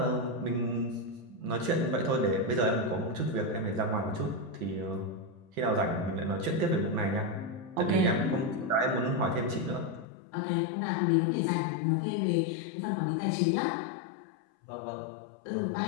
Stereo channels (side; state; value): right; drops out; at 10.1 s